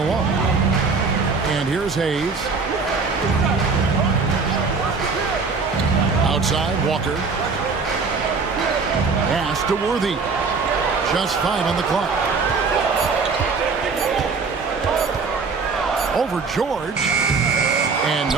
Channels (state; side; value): quieter; left; 4.6 dB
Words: And here's Hayes. Outside, Walker. Pass to Worthy. Just 5 on the clock. Over George. And